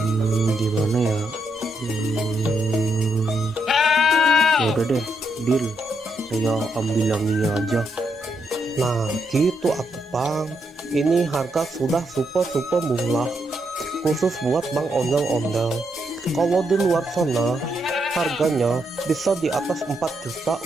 Gimana ya? Ya udah deh, deal. Saya ambil yang ini aja. Nah gitu aku bang, ini harga sudah super murah khusus buat Bang Ondel-Ondel. Kalau di luar sana harganya bisa di atas 4 juta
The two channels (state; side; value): normal; both; correlation 0.79